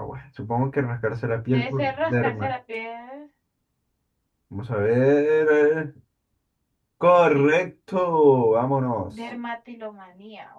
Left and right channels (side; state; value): both; identical; correlation 1.00